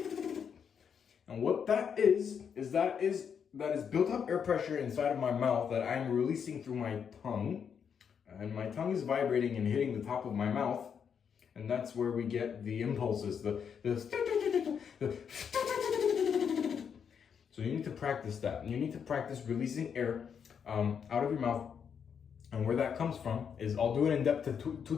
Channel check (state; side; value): quieter; right; 7.2 dB